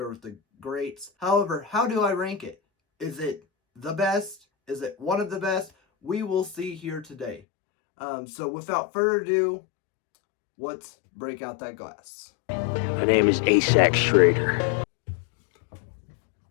with the greats. However, how do I rank it? Is it the best? Is it one of the best? We will see here today. So without further ado, let's break out that glass. My name is Asac Schrader.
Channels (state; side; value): drops out; right; at 7.4 s